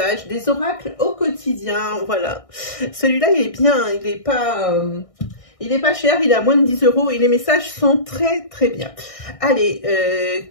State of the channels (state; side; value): late; right; 1.6 ms